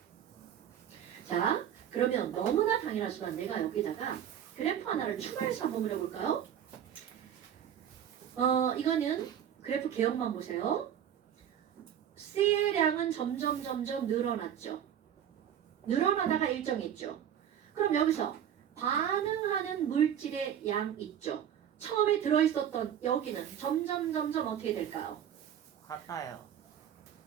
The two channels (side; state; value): left; quieter; 9.6 dB